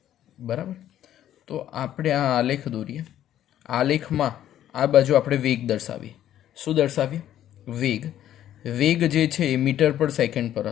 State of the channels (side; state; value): right; quieter; 11.6 dB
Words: બરાબર. તો આપણે આ આલેખ દોરીએ. આલેખમાં આ બાજુ આપણે વેગ દર્શાવીએ. શું દર્શાવીએ? વેગ જે છે એ મીટર પર સેકન્ડ પર